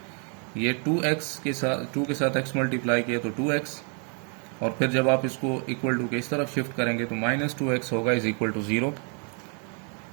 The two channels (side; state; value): left; quieter; 39.1 dB